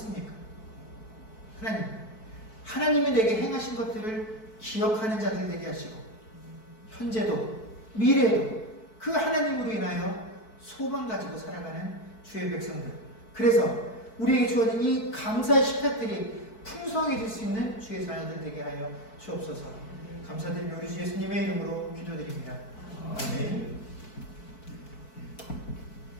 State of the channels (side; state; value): right; late; 4.6 ms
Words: 하나님, 하나님이 내게 행하신 것들을 기억하는 자들 되게 하시고 현재도 미래에도 그 하나님으로 인하여 소망 가지고 살아가는 주의 백성들, 그래서 우리에게 주어진 이 감사의 식탁들이 풍성해질 수 있는 주의 자녀들 되게 하여 주옵소서. 감사드리며 우리 주 예수님의 이름으로 기도드립니다. 아멘.